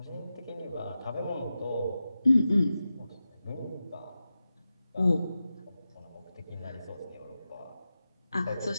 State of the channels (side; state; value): both; inverted; correlation -0.92